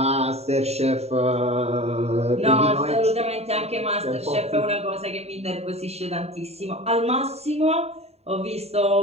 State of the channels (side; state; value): left; late; 0.30 ms